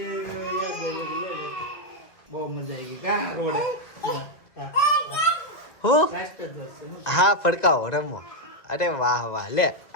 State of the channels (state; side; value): late; right; 2.3 ms